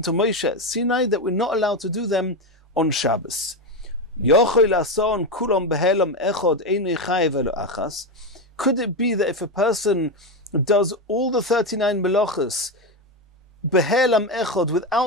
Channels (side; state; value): both; normal; correlation 0.12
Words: Moshe at Sinai that we're not allowed to do them on Shabbos. Yochel ason kulam behelam echod einei chayev elo achas. Could it be that if a person does all the 39 melachos behelam echod